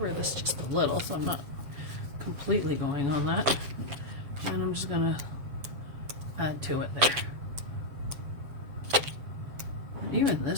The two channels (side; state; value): left; late; 7.5 ms